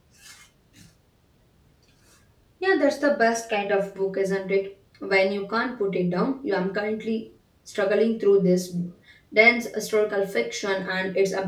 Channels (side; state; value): both; identical; correlation 1.00